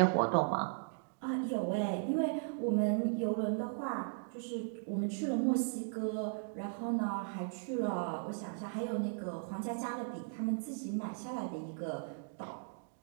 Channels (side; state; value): left; silent; digital silence